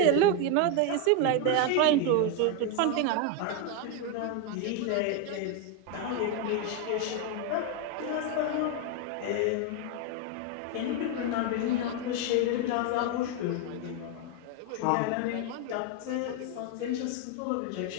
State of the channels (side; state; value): both; different; correlation 0.01